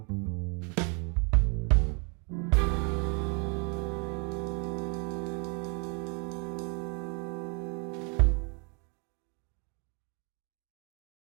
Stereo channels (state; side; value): quieter; left; 35.4 dB